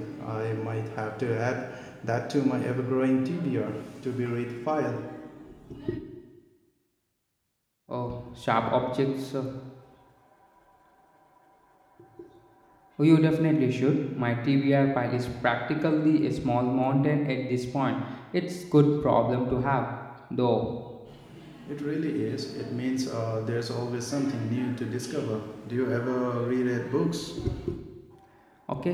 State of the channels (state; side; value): identical; both; correlation 1.00